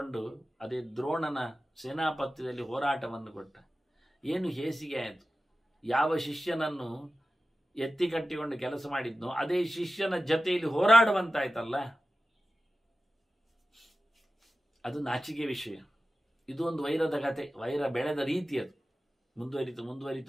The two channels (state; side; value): normal; both; correlation 0.94